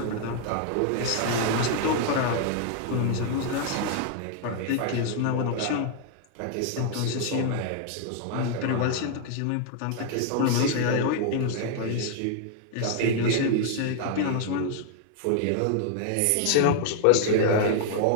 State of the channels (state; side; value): different; both; correlation 0.00